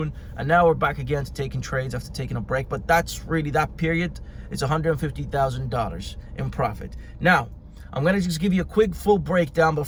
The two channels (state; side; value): identical; both; correlation 1.00